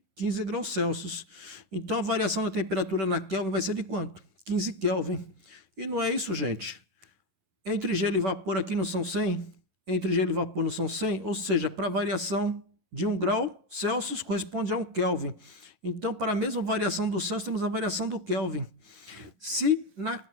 15 graus Celsius. Então, a variação da temperatura na Kelvin vai ser de quanto? 15 Kelvin. E não é isso, gente. Entre gelo e vapor aqui não são 100? Entre gelo e vapor não são 100? Ou seja, para a variação de 1 grau Celsius corresponde a 1 Kelvin. Então, para a mesma variação do Celsius, temos a variação do Kelvin. Se na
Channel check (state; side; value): late; left; 10 ms